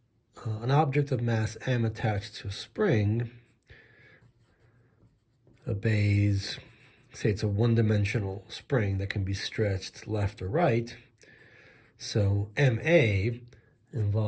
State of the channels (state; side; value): identical; both; correlation 1.00